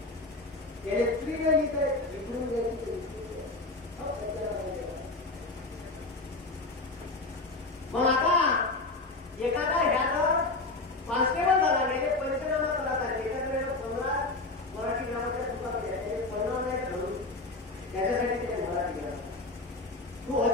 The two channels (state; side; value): quieter; right; 3.2 dB